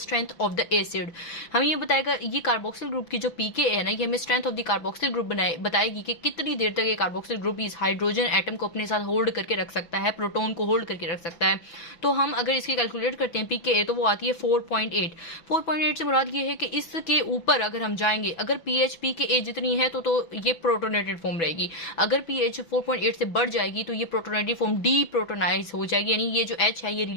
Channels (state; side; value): late; right; 6.0 ms